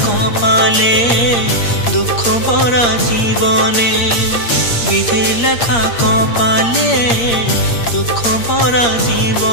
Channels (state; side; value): late; right; 8.6 ms